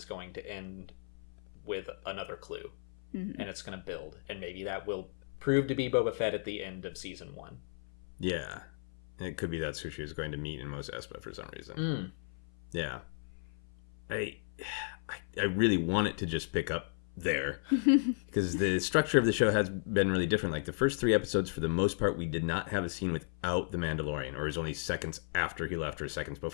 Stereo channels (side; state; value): right; silent; 55 dB below the other